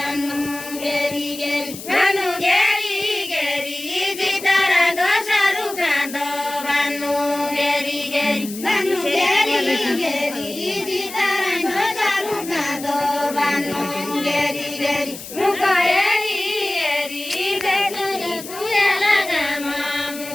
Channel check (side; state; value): left; noise; hiss, 12 dB below the sound